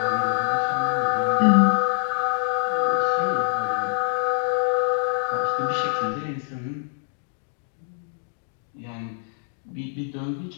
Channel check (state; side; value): silent; right; digital silence